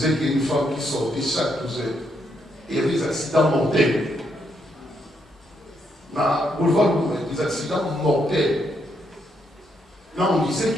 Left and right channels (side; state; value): both; normal; correlation 0.77